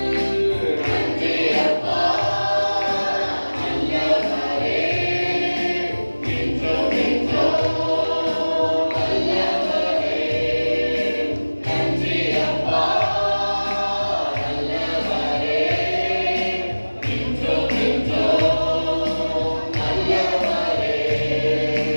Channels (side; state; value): both; inverted; correlation -1.00